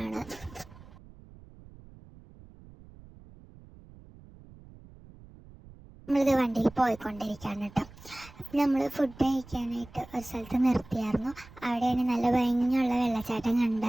നമ്മളിത് വണ്ടിയിൽ പോയിക്കൊണ്ടിരിക്കുകയാണ് കേട്ടോ. നമ്മൾ ഫുഡ് കഴിക്കാനായിട്ട് ഒരു സ്ഥലത്ത് നിർത്തിയായിരുന്നു. അവിടെയാണ് നല്ല ഭംഗിയുള്ള വെള്ളച്ചാട്ടം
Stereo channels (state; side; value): noise; right; rumble, 21 dB below the sound